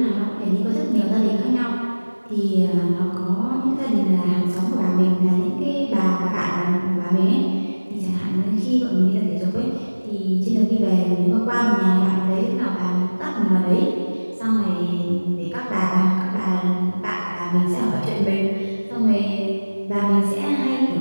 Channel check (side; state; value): both; inverted; correlation -1.00